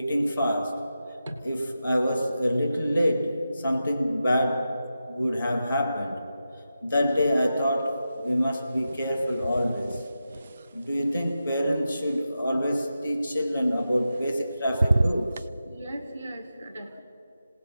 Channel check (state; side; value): inverted; both; correlation -0.90